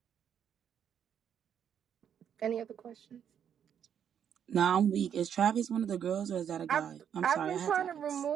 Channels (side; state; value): left; quieter; 8.7 dB